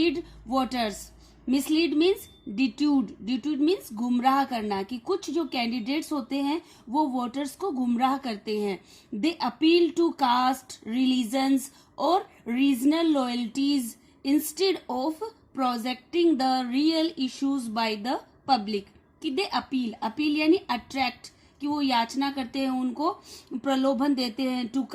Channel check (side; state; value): both; identical; correlation 1.00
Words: voters. Mislead means डिट्यूड means गुमराह करना कि कुछ जो candidates होते हैं वो voters को गुमराह करते हैं. दे अपील टू कास्ट रिलीजन्स और regional loyalties instead of projecting the real issues by the public. कि दे अपील यानी अट्रैक्ट कि वो याचना करते हैं, उनको प्रलोभन देते हैं, टू